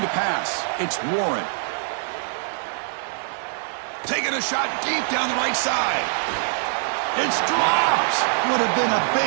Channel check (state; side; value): silent; left; digital silence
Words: to pass. It's Warren. Taking a shot deep down the right side. It's dropped. Would have been a